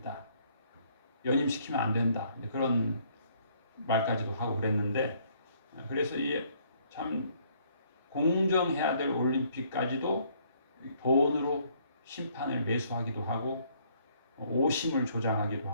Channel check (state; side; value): inverted; both; correlation -0.65